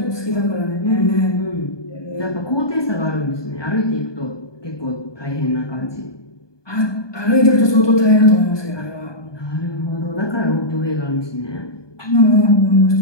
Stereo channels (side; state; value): right; late; 1.2 ms